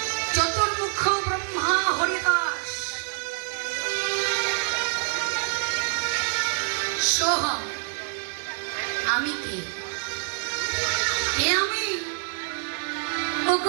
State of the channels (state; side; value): silent; left; 59 dB below the other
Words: চতুর্মুখ ব্রহ্মা হরিদাস, সোহম। আমি কে? কে আমি?